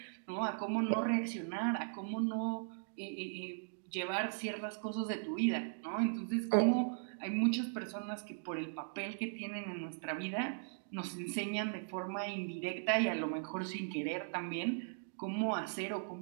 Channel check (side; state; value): left; silent; digital silence